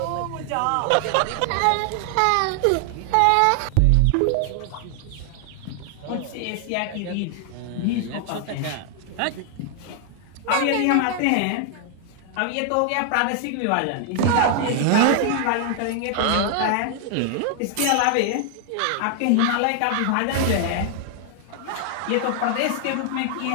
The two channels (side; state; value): both; different; correlation 0.00